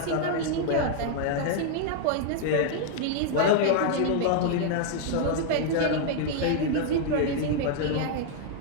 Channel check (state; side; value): different; both; correlation 0.00